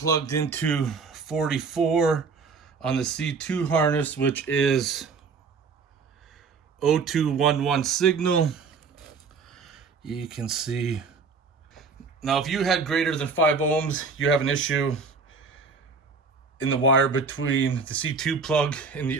into 44 on the C2 harness, which is O211 signal. You can see. Now, if you had greater than 5 ohms, you have an issue in the wire between the C2 plug and the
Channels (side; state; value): left; quieter; 4.9 dB